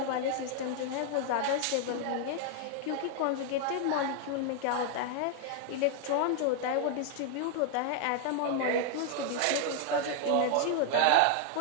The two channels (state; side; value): different; both; correlation 0.00